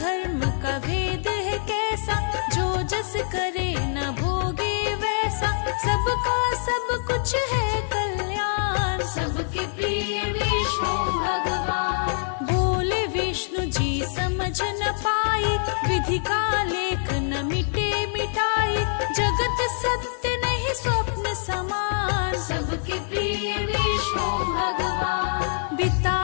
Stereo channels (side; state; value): right; silent; 57 dB below the other